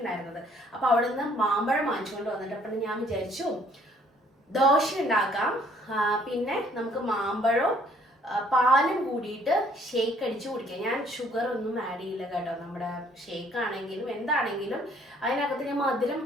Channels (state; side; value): normal; both; correlation 0.61